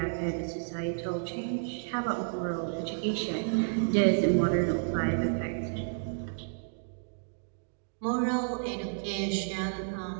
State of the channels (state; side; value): silent; left; digital silence